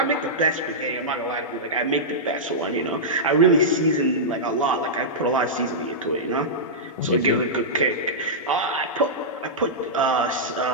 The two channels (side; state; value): both; normal; correlation -0.12